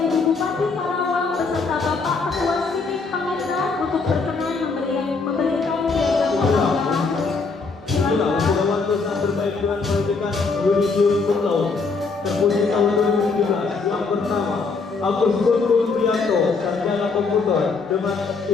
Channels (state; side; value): quieter; right; 4.4 dB